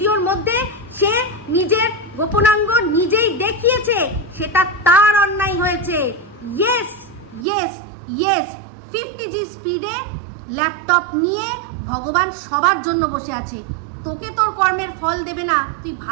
মধ্যে সে নিজের গোপনাঙ্গ নিজেই দেখিয়েছে, সেটা তার অন্যায় হয়েছে। ইয়েস ইয়েস ইয়েস, 50G স্পিডে ল্যাপটপ নিয়ে ভগবান সবার জন্য বসে আছে, তোকে তোর কর্মের ফল দেবে না তুই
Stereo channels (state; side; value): drops out; left; at 7.5 s